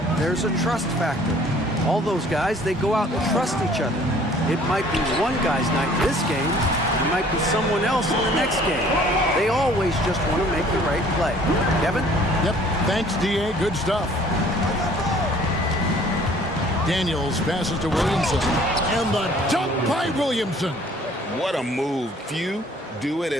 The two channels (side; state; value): both; normal; correlation 0.55